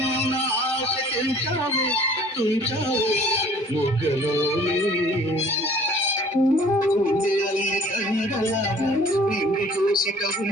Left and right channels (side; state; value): both; normal; correlation 0.52